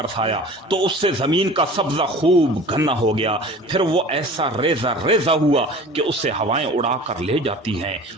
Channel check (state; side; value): normal; both; correlation 0.41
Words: تو اس سے زمین کا سبزہ خوب گھنا ہو گیا پھر وہ ایسا ریزہ ریزہ ہوا کہ اس سے ہوائیں اڑا کر لے جاتی ہیں.